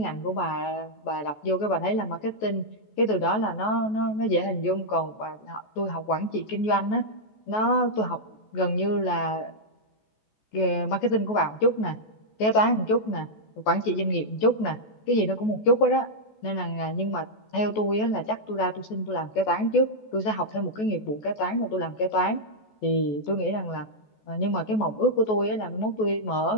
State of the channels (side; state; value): right; late; 14 ms